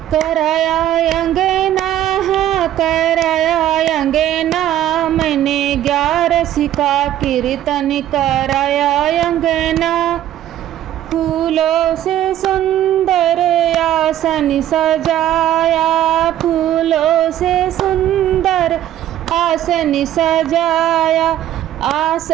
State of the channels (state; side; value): quieter; left; 12.3 dB